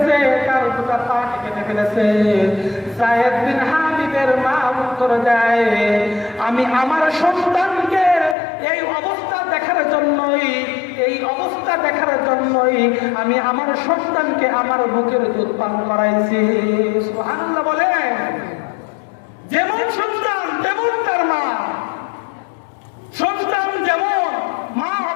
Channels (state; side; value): drops out; right; at 8.3 s